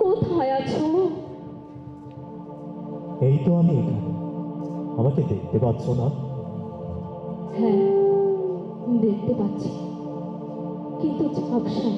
কোথায় আছো? এই তো আমি এখানে। আমাকে দেখতে পাচ্ছ না? হ্যাঁ, দেখতে পাচ্ছি, কিন্তু ঝাপসা,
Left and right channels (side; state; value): both; identical; correlation 1.00